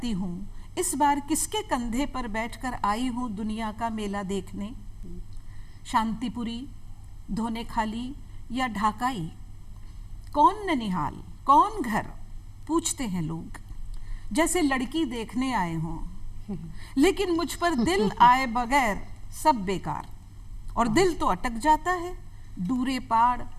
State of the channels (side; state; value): both; identical; correlation 1.00